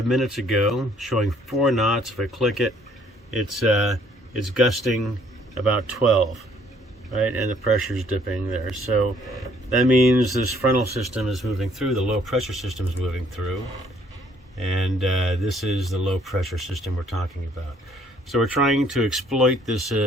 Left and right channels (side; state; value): both; normal; correlation 0.63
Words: minutes ago showing 4 knots. If I click it, it's gusting about 12, right? And the pressure is dipping there. So that means this frontal system is moving through, the low pressure system is moving through, and this is the low pressure system we're talking about. So we're trying to exploit this